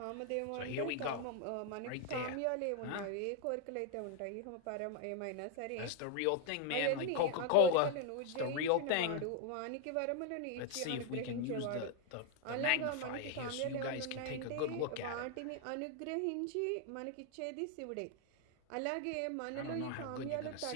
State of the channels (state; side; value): different; both; correlation 0.00